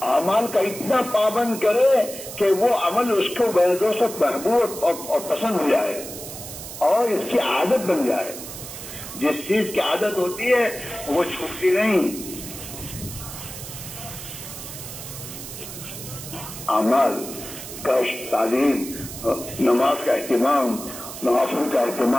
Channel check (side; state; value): right; noise; hiss, 11 dB below the sound